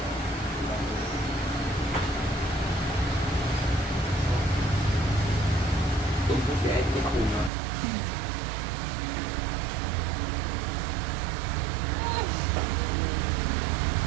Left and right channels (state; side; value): drops out; left; at 7.5 s